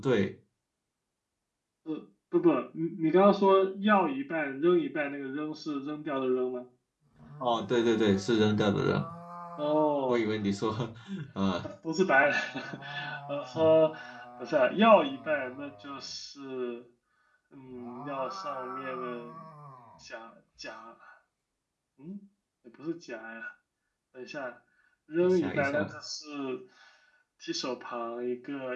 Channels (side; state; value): both; identical; correlation 1.00